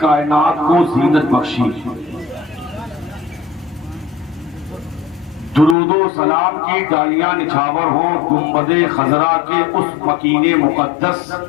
کو زینت بخشی درود و سلام کی ڈالیاں نچھاور ہوں گنبد خضرا کے اس مکین مقدس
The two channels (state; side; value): drops out; right; at 5.8 s